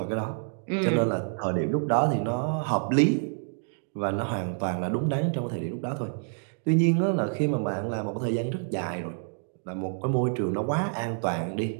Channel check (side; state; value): left; silent; 59 dB below the other